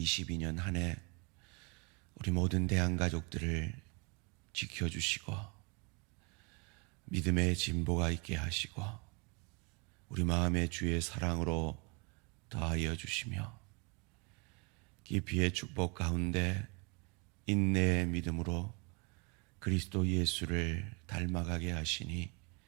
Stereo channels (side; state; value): left; quieter; 31.6 dB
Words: 한 해 우리 모든 대한가족들을 지켜주시고 믿음의 진보가 있게 하시고 우리 마음의 주의 사랑으로 더하여 주시며 깊이의 축복 가운데 인내의 믿음으로 그리스도 예수를 닮아가게 하시니